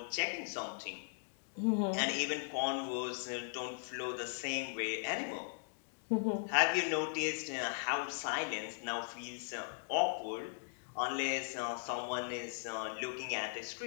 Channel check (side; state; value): right; silent; digital silence